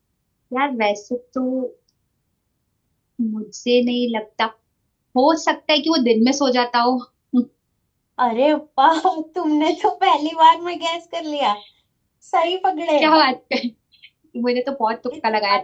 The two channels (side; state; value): both; identical; correlation 1.00